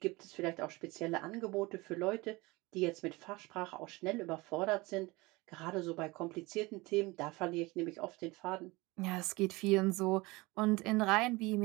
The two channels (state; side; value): quieter; left; 22.9 dB